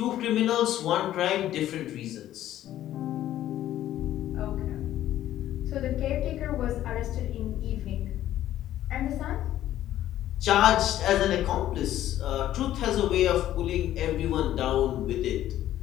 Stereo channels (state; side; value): quieter; right; 12.8 dB